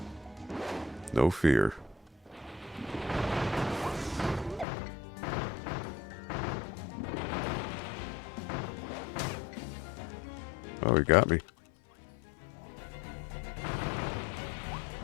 No fear. Oh, he got me.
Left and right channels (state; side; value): drops out; right; at 4.7 s